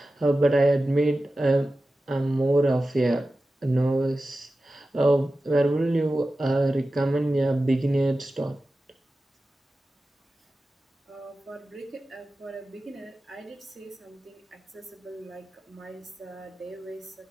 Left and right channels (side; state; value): both; normal; correlation 0.94